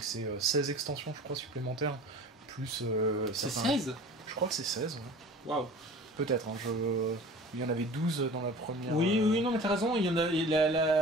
ces 16 extensions, je crois, supplémentaires, plus... c'est 16 Je crois que c'est 16, ouais. Waouh. Peut-être, hein, il y en avait 12 dans la première... Oui, non, mais t'as raison, il y en a... les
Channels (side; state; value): both; normal; correlation 0.41